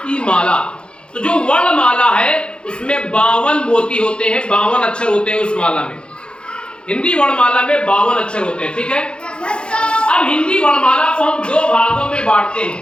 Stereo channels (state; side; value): late; right; 0.054 ms